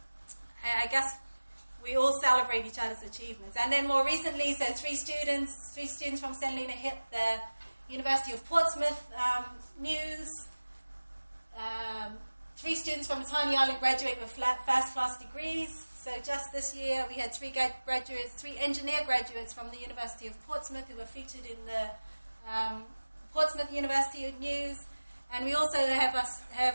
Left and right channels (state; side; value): inverted; both; correlation -1.00